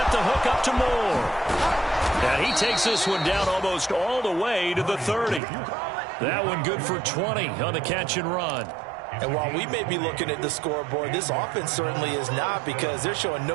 the hook up to Moore. And he takes this one down almost all the way to the 30. That one good for 20 on the catch and run. And while we may be looking at the scoreboard, this offense certainly is not because they're showing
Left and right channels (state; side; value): drops out; left; at 5.4 s